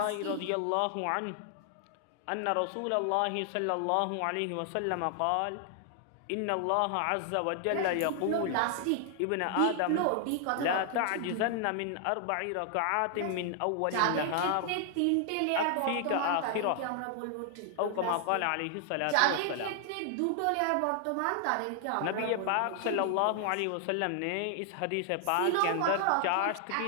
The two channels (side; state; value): both; different; correlation 0.00